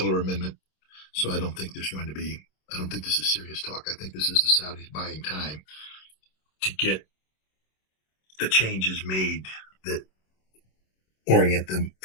amendment. So I don't think this is serious talk. I think this is the Saudis buying time to get the changes made that orient them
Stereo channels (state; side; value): late; right; 26 ms